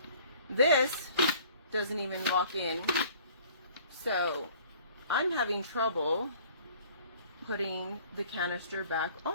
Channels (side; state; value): both; inverted; correlation -0.53